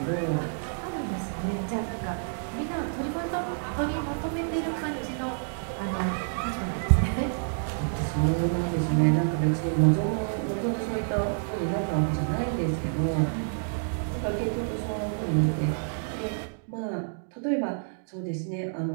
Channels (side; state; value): left; silent; digital silence